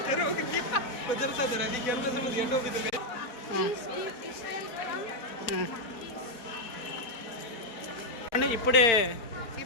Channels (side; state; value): right; late; 4.4 ms